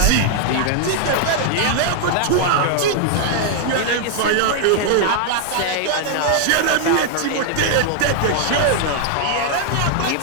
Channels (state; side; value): different; both; correlation 0.00